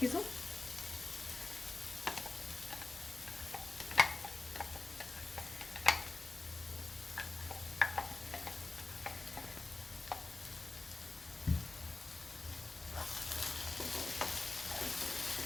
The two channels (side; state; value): right; quieter; 3.4 dB